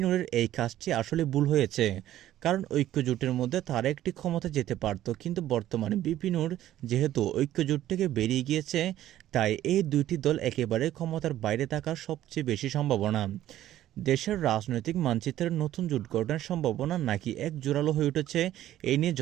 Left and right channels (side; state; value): left; quieter; 13.2 dB